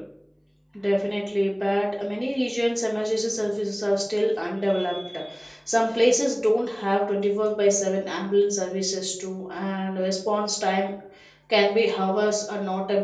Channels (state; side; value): identical; both; correlation 1.00